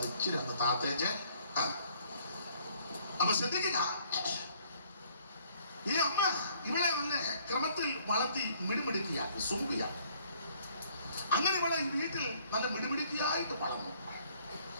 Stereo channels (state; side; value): inverted; both; correlation -0.62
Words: ഇച്ചിരി ഒന്ന് താത്തേച്ച്. അപ്പൊ ശ്രദ്ധിക്കുക, ഈ അമ്മ ഇവളെ നല്ല ക്രമത്തിൽ വളർത്തി മിടുമിടുക്കിയാക്കി സുമുഖിയാക്കി. അങ്ങനെ ഇവളെ ഈ വീട്ടിൽ നല്ല മിടുമിടുക്കിയായിട്ട് വളർന്നു.